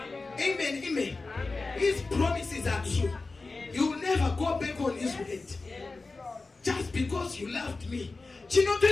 Amen. Amen. His promises are true. You will never go back on his word. Just because you loved me.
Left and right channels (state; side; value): quieter; right; 3.7 dB